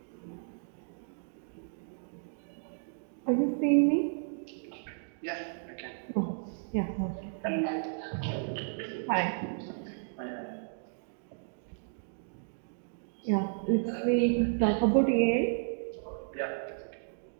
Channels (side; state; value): left; silent; digital silence